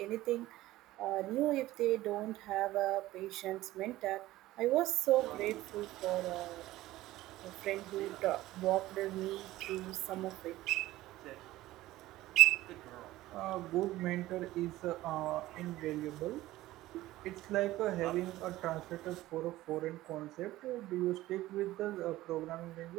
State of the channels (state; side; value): quieter; left; 16.4 dB